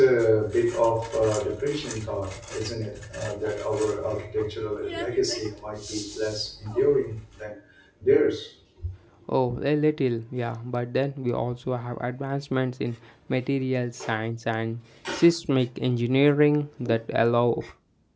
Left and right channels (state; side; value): identical; both; correlation 1.00